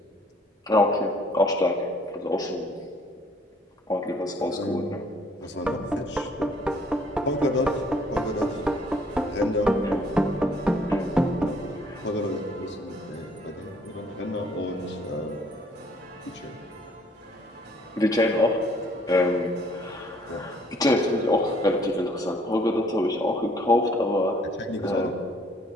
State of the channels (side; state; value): both; normal; correlation 0.61